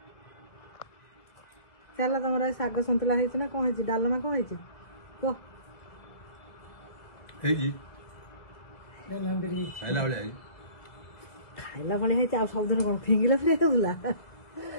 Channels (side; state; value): right; late; 2.0 ms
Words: चल तुम शाग सन्तुला ना कौन है डालमा कौन है कह खाइला भाई है सबदिन कौन फिंगिला फिर होगा